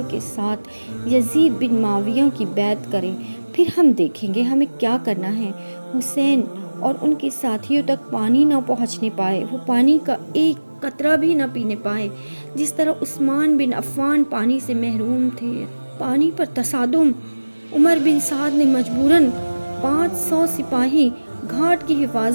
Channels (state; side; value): inverted; both; correlation -1.00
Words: کے ساتھ یزید بن معاویہ کی بیعت کریں، پھر ہم دیکھیں گے ہمیں کیا کرنا ہے۔ حسین اور ان کے ساتھیوں تک پانی نہ پہنچنے پائے، وہ پانی کا ایک قطرہ بھی نہ پینے پائے، جس طرح عثمان بن عفان پانی سے محروم تھے۔ پانی پر تصادم۔ عمر بن سعد نے مجبوراً 500 سپاہی گھاٹ کی